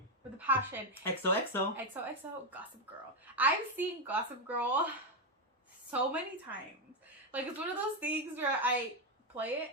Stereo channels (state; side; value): normal; both; correlation 0.05